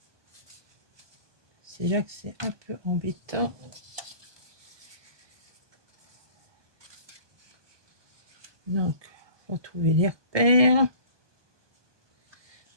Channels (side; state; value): left; late; 1.2 ms